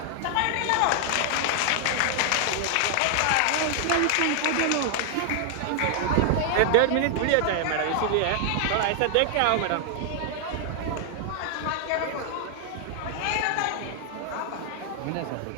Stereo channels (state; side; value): different; both; correlation 0.00